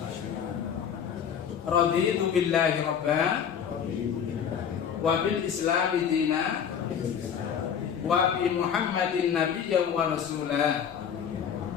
Raditu billahi rabba wa bil islami dina wa bi Muhammadin nabiyyan wa rasulah.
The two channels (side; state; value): right; quieter; 7.9 dB